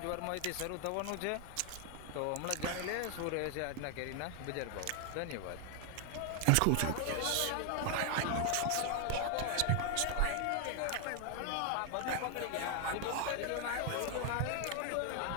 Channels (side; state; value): both; different; correlation 0.00